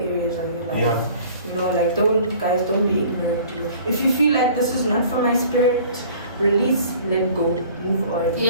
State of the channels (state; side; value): inverted; both; correlation -0.50